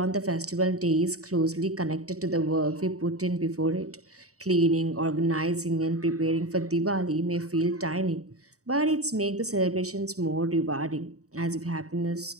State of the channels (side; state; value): left; late; 0.66 ms